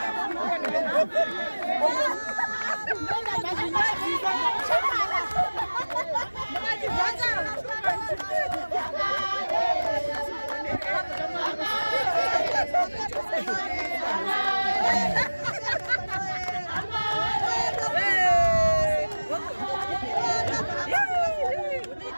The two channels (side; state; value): both; inverted; correlation -1.00